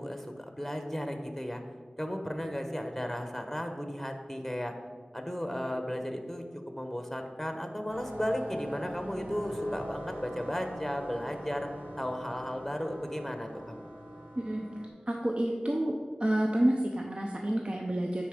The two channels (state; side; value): normal; both; correlation 0.98